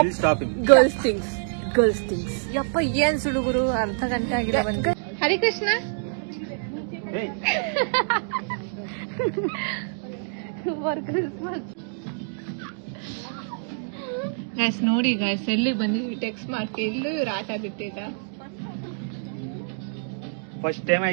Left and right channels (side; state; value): left; silent; digital silence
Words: stopping. Girls things ಯಪ್ಪ ಏನ್ ಸುಡುಗುರು ಅರ್ಧ ಗಂಟೆ ಆಗಿಲ್ಲ ಬಂದು. ಹರಿಕೃಷ್ಣ Hey. ಗೈಸ್ ನೋಡಿ ಗೈಸ್ ಎಲ್ಲಿ ಬಂದಿದ್ವಿ ಟೆಕ್ಸ್ಟ್ ಮಾಡ್ತಿ ಎಲ್ಲೂ ಇವ್ರು ಆಟ ಬಿಟ್ಟಿದ್ದ. First time